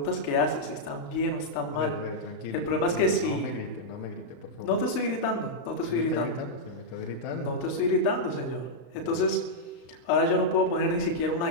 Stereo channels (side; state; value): right; late; 35 ms